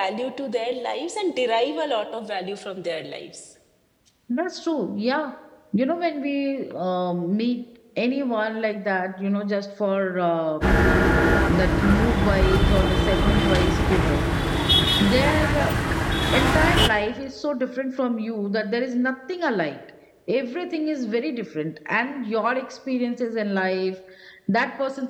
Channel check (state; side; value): identical; both; correlation 1.00